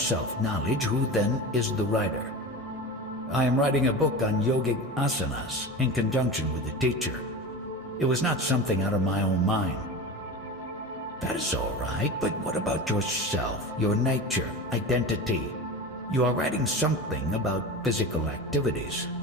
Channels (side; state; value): both; normal; correlation 0.28